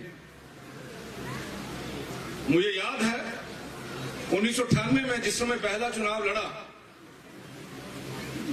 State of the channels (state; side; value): identical; both; correlation 1.00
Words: मुझे याद है 1998 में जिस समय पहला चुनाव लड़ा,